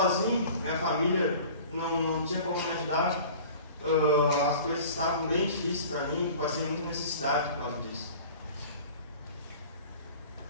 minha família não tinha como me ajudar, as coisas estavam bem difíceis para mim, passei muita necessidade por causa disso.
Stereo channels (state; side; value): inverted; both; correlation -0.43